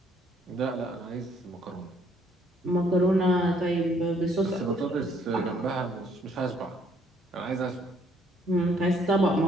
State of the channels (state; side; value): normal; both; correlation 0.65